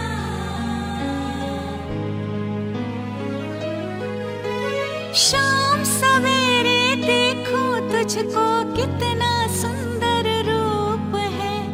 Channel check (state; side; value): identical; both; correlation 1.00